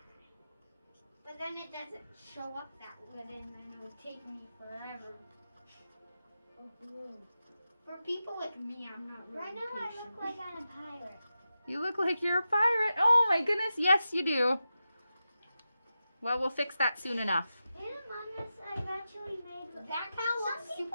But then it doesn't show up that good, and then it'll take me forever. For people like me, I'm not really Right now I patient. look like I'm a pirate. You look like you're a pirate. Oh my goodness, yes you do. Well, we'll fix that soon enough. In AmongUs, I've actually made. That kind of looks Some super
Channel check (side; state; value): both; inverted; correlation -0.91